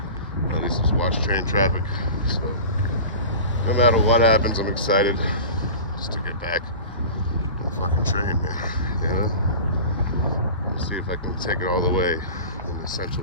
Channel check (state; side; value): inverted; both; correlation -0.35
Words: and at least just watch train traffic. So no matter what happens, I'm excited just to get back on the fucking train, man. You know, see if I can take it all the way and in